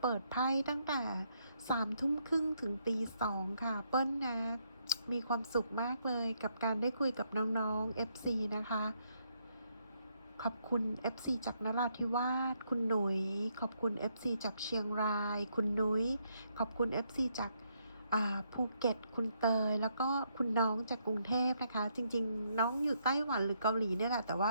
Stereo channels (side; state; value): both; inverted; correlation -0.75